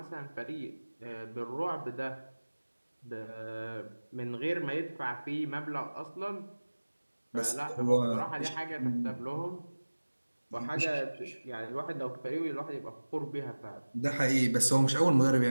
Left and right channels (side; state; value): both; inverted; correlation -1.00